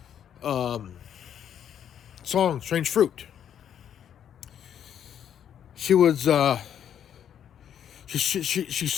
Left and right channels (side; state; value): right; quieter; 9.3 dB